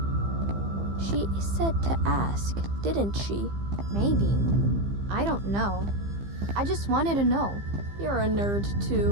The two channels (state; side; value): late; left; 15 ms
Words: She said to ask, didn't she? Maybe. I don't know. I just wanted to know. You're a nerd,